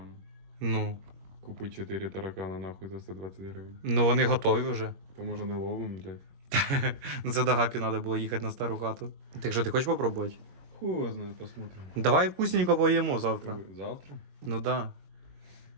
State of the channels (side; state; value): left; late; 21 ms